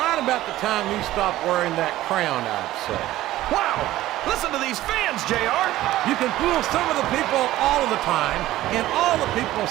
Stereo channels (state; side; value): quieter; left; 15.4 dB